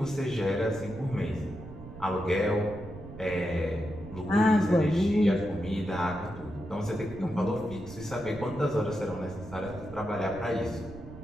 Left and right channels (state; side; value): noise; right; rumble, 14 dB below the sound